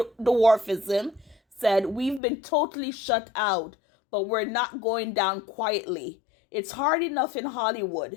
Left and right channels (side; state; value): right; drops out; at 2.2 s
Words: said, "We've been totally shut out, but we're not going down quietly. It's hard enough in